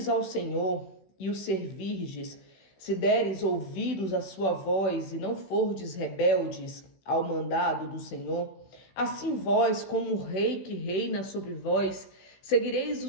ao Senhor e o servirdes, se deres ouvidos à sua voz e não fordes rebeldes ao mandado do Senhor, assim vós, como o rei que reina sobre vós, seguireis o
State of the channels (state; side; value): late; right; 16 ms